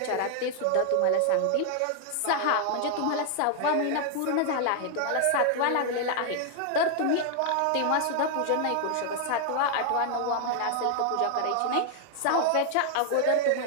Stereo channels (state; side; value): different; both; correlation 0.00